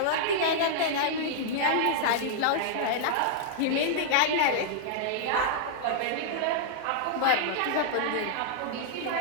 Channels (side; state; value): both; different; correlation -0.01